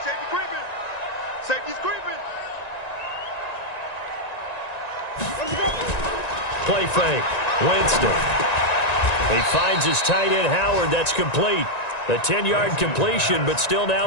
Safety's creeping. Play fake. Winston. He finds his tight end, Howard. That's complete. A 10-yard completion, but still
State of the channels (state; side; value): late; right; 1.9 ms